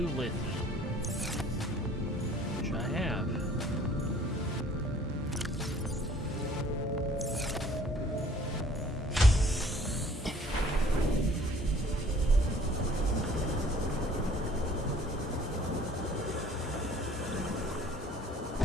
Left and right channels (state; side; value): normal; both; correlation 0.55